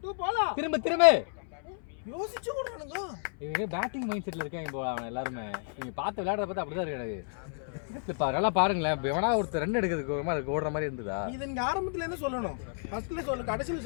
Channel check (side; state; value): right; silent; 57 dB below the other